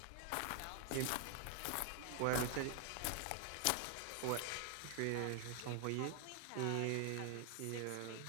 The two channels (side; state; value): both; different; correlation 0.00